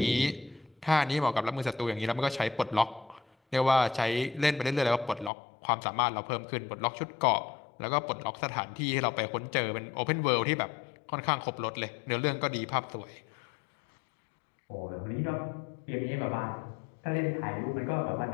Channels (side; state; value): right; drops out; at 5.3 s